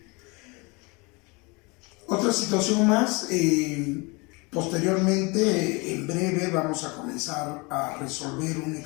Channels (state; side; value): quieter; right; 27.7 dB